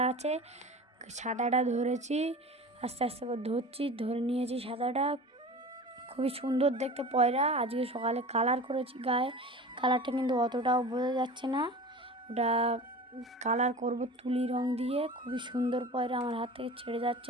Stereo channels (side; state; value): both; normal; correlation 0.36